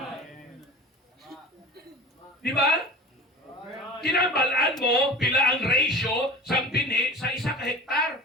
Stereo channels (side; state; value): both; normal; correlation 0.37